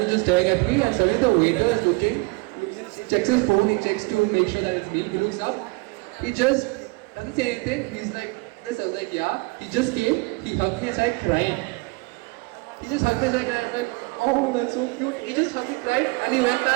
was just staring at me and suddenly the waiter is looking, he checks his phone, he checks to make sure that it's me, he looks up, he just doesn't say anything, he's like this, I was like yeah, he just came, he hugged me and started crying. He just hugged me and I was like, oh that's so cute, he just hugged me, cried and he went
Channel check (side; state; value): left; quieter; 27.5 dB